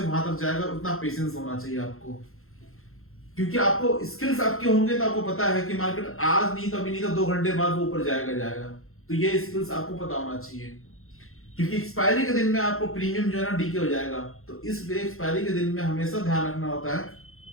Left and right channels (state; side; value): late; right; 0.62 ms